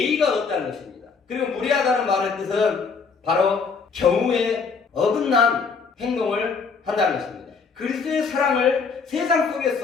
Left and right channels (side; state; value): right; quieter; 5.2 dB